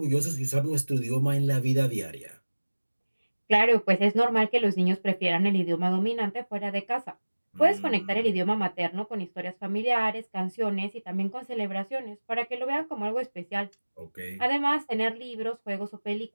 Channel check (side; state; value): both; inverted; correlation -1.00